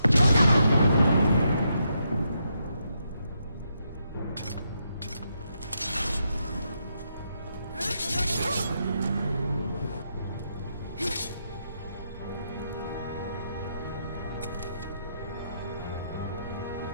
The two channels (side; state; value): both; inverted; correlation -0.80